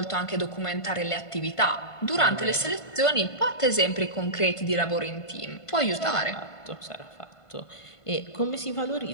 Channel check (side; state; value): right; late; 1.5 ms